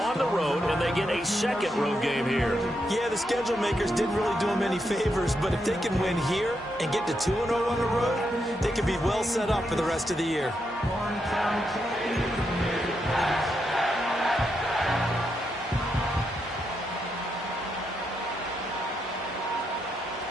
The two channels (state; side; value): normal; both; correlation 0.82